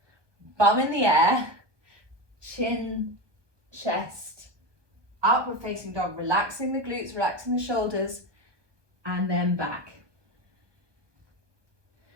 bum in the air, chin, chest, upward facing dog, relaxing the glutes, relaxing the shoulders, and then back.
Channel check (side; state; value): left; late; 1.2 ms